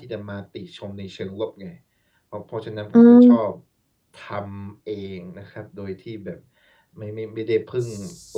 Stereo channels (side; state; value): both; identical; correlation 1.00